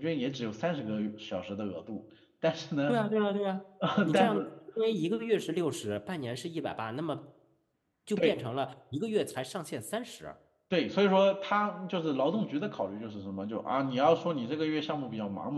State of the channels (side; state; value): both; identical; correlation 1.00